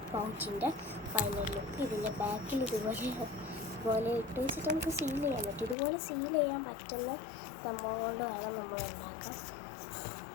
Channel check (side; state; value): right; drops out; at 5.8 s